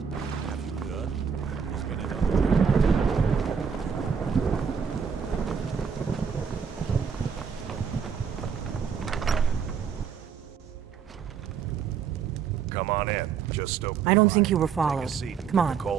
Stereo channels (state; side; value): quieter; left; 6.8 dB